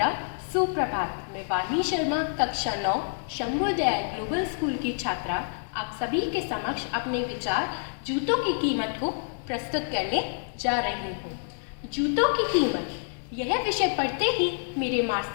सुप्रभात। मैं वाणी शर्मा कक्षा 9 शंभोदय ग्लोबल स्कूल की छात्रा आप सभी के समक्ष अपने विचार जूतों की कीमत को प्रस्तुत करने जा रही हूँ। जूतों की कीमत, यह विषय पढ़ते ही मेरे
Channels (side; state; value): right; silent; digital silence